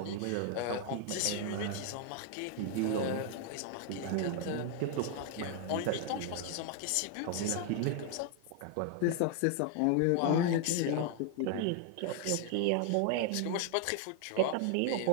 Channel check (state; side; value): different; both; correlation 0.00